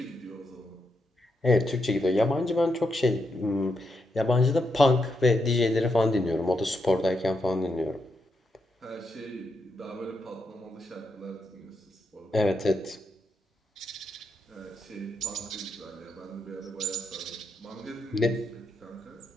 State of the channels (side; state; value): both; normal; correlation 0.82